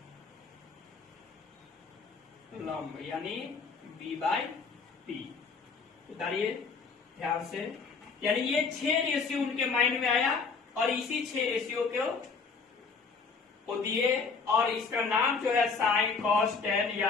लंब, यानी B/P। उतारिए ध्यान से, यानी ये 6 रेशियो उनके माइंड में आया और इसी 6 रेशियो को दिए। और इसका नाम जो है साइन, कॉस, टेन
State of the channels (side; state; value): right; quieter; 4.9 dB